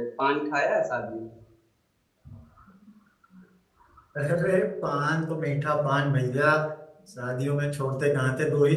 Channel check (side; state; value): both; identical; correlation 1.00